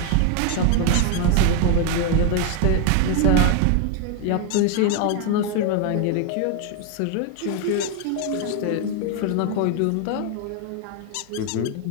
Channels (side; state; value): both; different; correlation 0.01